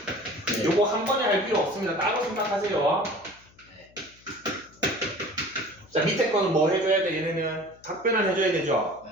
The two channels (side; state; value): left; noise; hum, 28 dB below the sound